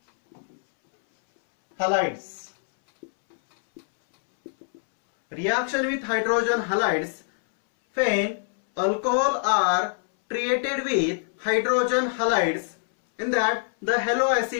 halides. Reaction with hydrogen halides, when alcohol are treated with hydrogen halides, in that the halo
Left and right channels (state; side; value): silent; right; 62 dB below the other